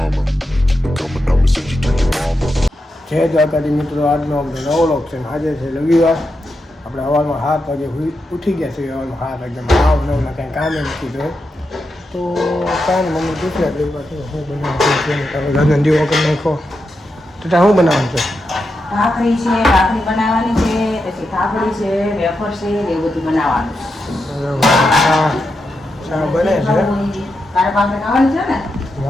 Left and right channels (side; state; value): both; normal; correlation 0.86